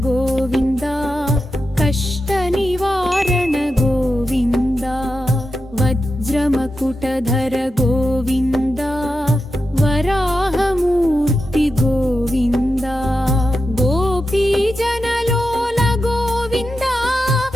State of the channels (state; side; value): normal; both; correlation 0.89